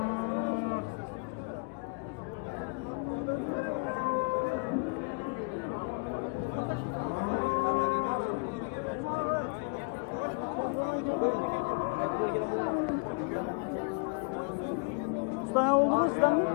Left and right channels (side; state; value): right; quieter; 36.0 dB